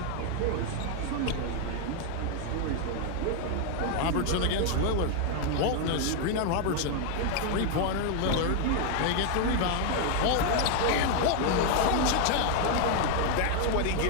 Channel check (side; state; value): both; different; correlation 0.00